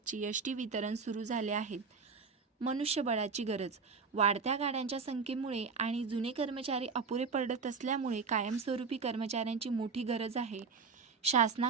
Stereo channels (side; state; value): left; quieter; 5.1 dB